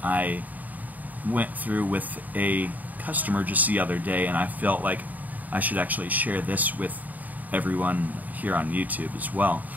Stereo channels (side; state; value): left; late; 0.079 ms